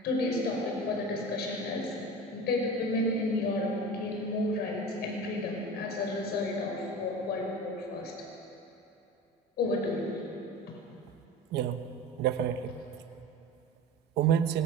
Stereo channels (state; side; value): normal; both; correlation 0.32